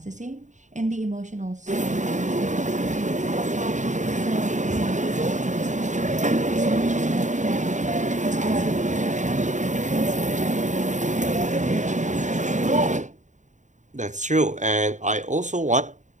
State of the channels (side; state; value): left; late; 0.35 ms